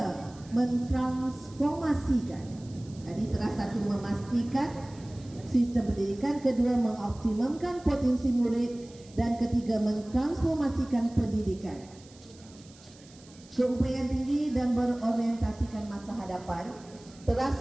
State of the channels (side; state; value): right; noise; hiss, 24 dB below the sound